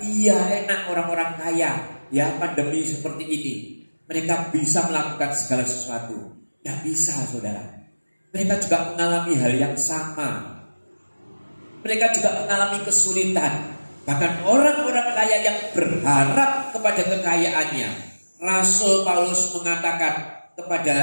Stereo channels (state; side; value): inverted; both; correlation -1.00